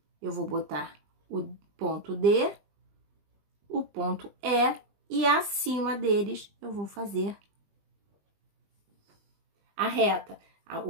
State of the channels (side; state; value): left; late; 20 ms